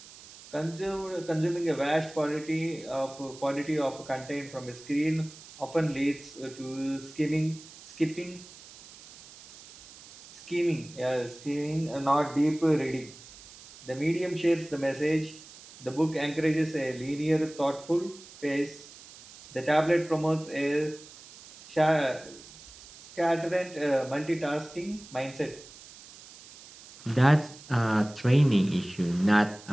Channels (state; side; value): noise; right; hiss, 19 dB below the sound